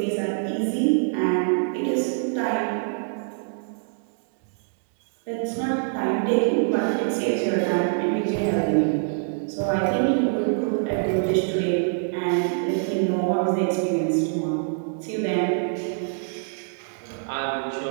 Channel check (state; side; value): silent; left; 62 dB below the other